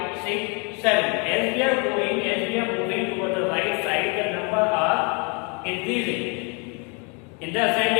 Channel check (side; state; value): right; quieter; 33.6 dB